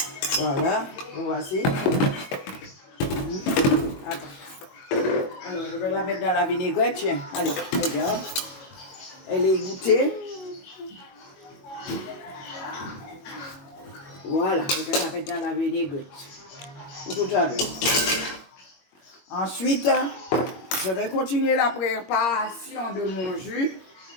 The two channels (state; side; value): late; right; 22 ms